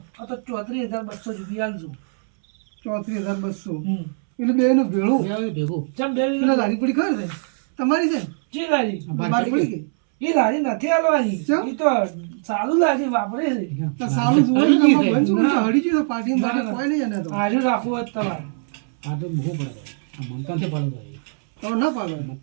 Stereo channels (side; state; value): left; silent; 64 dB below the other